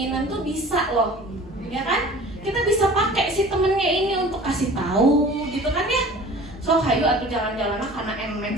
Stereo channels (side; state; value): both; normal; correlation 0.44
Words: tuh bisa loh. Ya kan? Kita bisa pakai si temennya ini untuk kasih tahu gitu kan ya. So hayu atau jalan-jalan karena